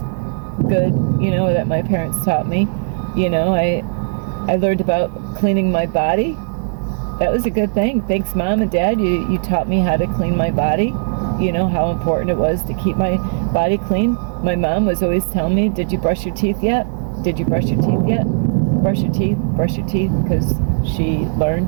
good, you know, that my parents taught me. You know, I learned about cleaning my body. That was a good thing. Thanks, Mom and Dad. You taught me how to clean my body. You know, how important it was to keep my body clean. My mom was always telling me, did you brush your teeth yet? Did you brush your teeth yet? Brush your teeth, because she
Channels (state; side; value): silent; left; digital silence